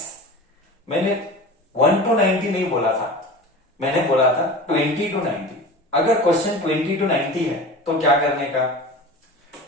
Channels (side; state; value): both; normal; correlation 0.34